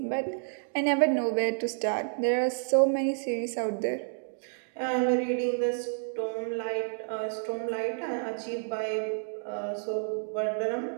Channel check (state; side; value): silent; left; digital silence